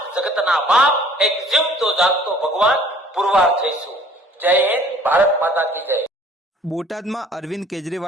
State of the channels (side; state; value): both; normal; correlation 0.53